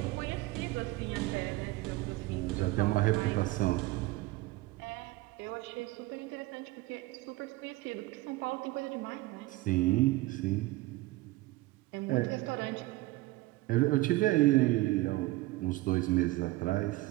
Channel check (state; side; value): quieter; left; 19.2 dB